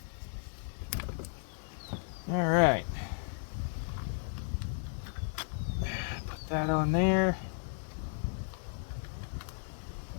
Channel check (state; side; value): silent; right; digital silence